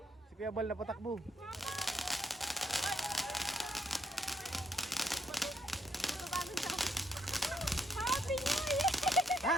Si Kuya Bal na patakbo. Happy New Year! Ha?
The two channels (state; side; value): normal; both; correlation 0.73